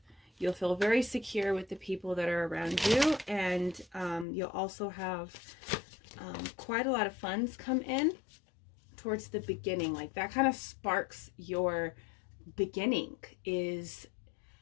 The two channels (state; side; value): drops out; right; at 4.2 s